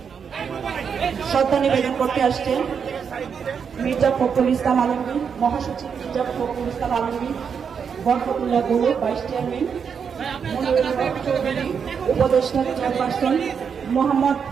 শ্রদ্ধা নিবেদন করতে আসছেন মির্জা ফখরুল ইসলাম আলমগীর, মহাসচিব মির্জা ফখরুল ইসলাম আলমগীর, বরকতুল্লাহ গৌরব ভাইস চেয়ারম্যান, উপদেষ্টা চেয়ারপারসন মোহাম্মদ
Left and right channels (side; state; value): left; quieter; 6.7 dB